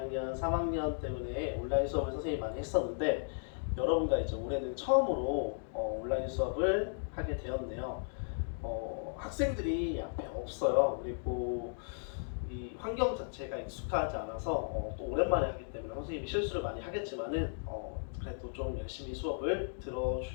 3학년 때문에 온라인 수업을 선생님이 많이 했었는데 여러분과 이제 올해는 처음으로 온라인 수업을 하게 되었네요. 학생들이 앞에 없어요. 그리고 이 환경 자체가 익숙하지 않아서 또 오랜만에 하기 때문에 선생님이 실수를 많이 하겠지만은 그래도 좀 열심히 수업을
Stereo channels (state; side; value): silent; right; digital silence